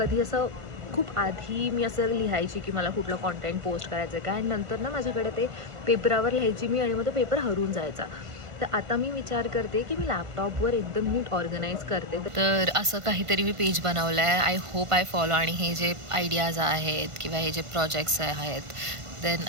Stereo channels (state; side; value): late; left; 1.5 ms